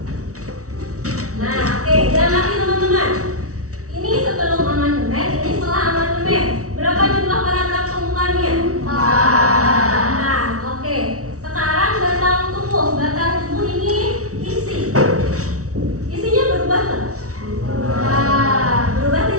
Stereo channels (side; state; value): left; late; 0.65 ms